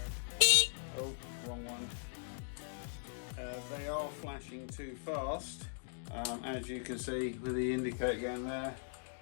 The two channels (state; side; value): silent; right; digital silence